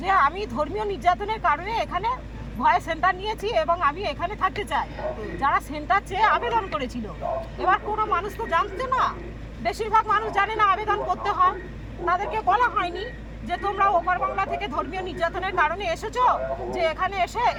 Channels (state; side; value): identical; both; correlation 1.00